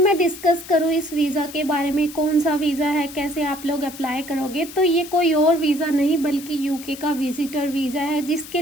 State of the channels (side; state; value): left; noise; hiss, 15 dB below the sound